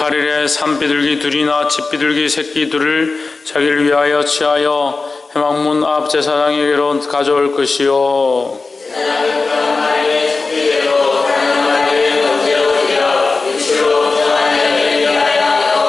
산비둘기 둘이나 집비둘기 새끼 둘을 자기를 위하여 취하여 회막문 앞 제사장에게로 가져올 것이요.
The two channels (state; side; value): quieter; right; 3.9 dB